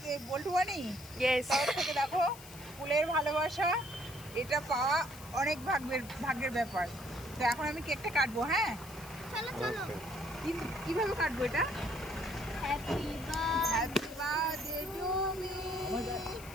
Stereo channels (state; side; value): noise; left; hiss, 17 dB below the sound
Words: বল্টু বানি? ইয়েস। তার থেকে দেখো ফুলের ভালোবাসা, এটা পাওয়া অনেক ভাগ্যের ব্যাপার। তো এখন আমি কেকটা কাটবো। হ্যাঁ, চলো চলো। কিভাবে কাটবো এটা? Happy happy birthday to me,